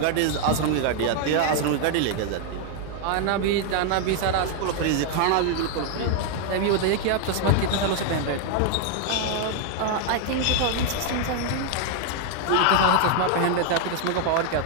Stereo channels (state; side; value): different; both; correlation 0.00